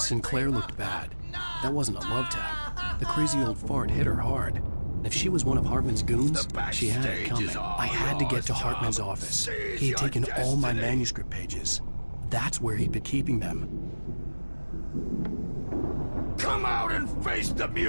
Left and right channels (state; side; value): inverted; both; correlation -1.00